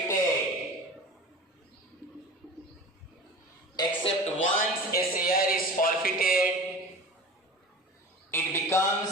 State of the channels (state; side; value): normal; both; correlation 0.36